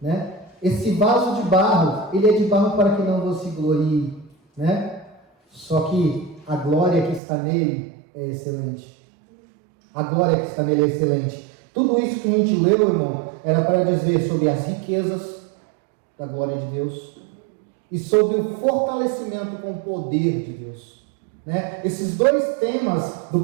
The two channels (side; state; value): left; drops out; at 7.2 s